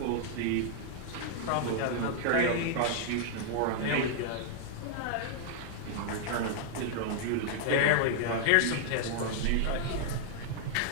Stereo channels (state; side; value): different; both; correlation -0.01